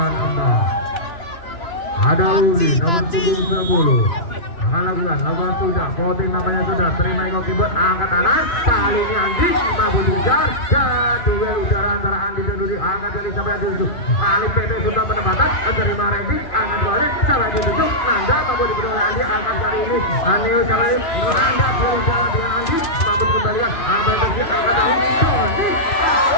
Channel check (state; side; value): late; right; 2.9 ms